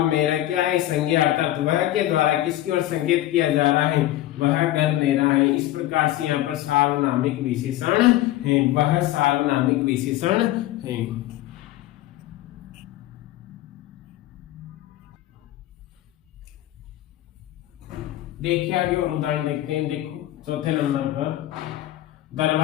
मेरा क्या है? संज्ञा, अर्थात वह के द्वारा किसकी ओर संकेत किया जा रहा है? वह घर मेरा है। इस प्रकार से यहाँ पर सार्वनामिक विशेषण है, वह सार्वनामिक विशेषण है। देखिए आगे और उदाहरण देखते हैं। देखो चौथे नंबर पर,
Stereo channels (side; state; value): right; quieter; 14.8 dB